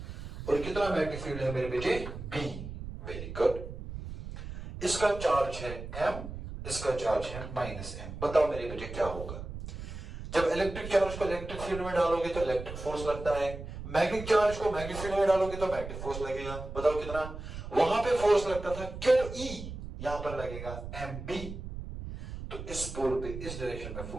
और कितना मैग्नेटिक फील्ड है मेरे बेटे? B. Very good. इसका चार्ज है m, इसका चार्ज है -m। बताओ मेरे बेटे क्या होगा? जब इलेक्ट्रिक चार्ज को इलेक्ट्रिक फील्ड में डालोगे तो इलेक्ट्रिक फोर्स लगता है, मैग्नेटिक चार्ज को मैग्नेटिक फील्ड में डालोगे तो मैग्नेटिक फोर्स लगेगा। बताओ कितना? वहां पे फोर्स लगता था QE, यहां पर लगेगा MB। तो इस पोल पे इस डायरेक्शन में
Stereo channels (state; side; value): noise; right; rumble, 9 dB below the sound